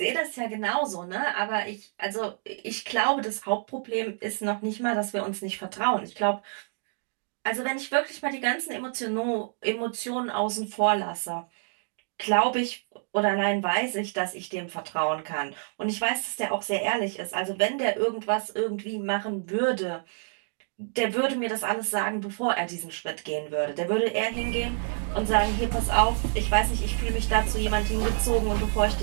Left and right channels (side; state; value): left; silent; digital silence